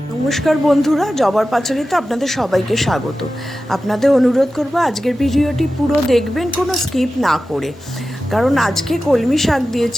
বন্ধুরা, জবার পাঁচালিতে আপনাদের সবাইকে স্বাগত। আপনাদের অনুরোধ করব আজকের ভিডিওটি পুরো দেখবেন, কোনো স্কিপ না করে, কারণ আজকে কলমি শাক দিয়ে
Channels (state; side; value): normal; both; correlation 0.94